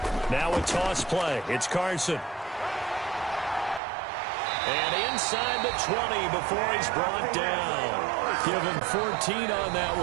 Now a toss play. It's Carson. And inside the 20 before he's brought down. Give him 14 on that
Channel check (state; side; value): drops out; left; at 3.8 s